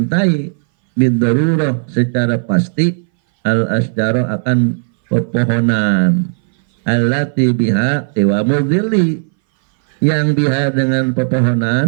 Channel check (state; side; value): silent; left; 63 dB below the other